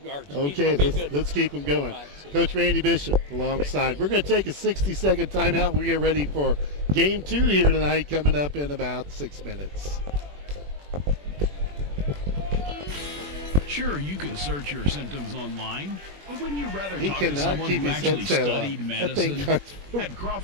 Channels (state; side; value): late; left; 21 ms